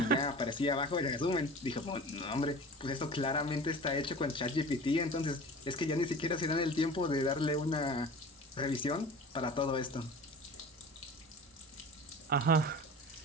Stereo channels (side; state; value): both; normal; correlation 0.38